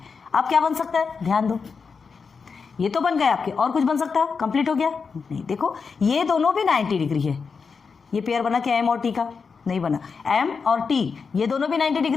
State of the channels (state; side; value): quieter; right; 5.3 dB